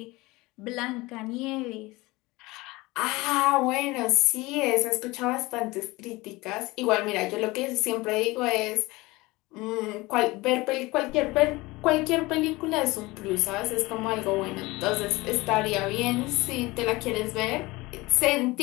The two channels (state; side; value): quieter; right; 21.6 dB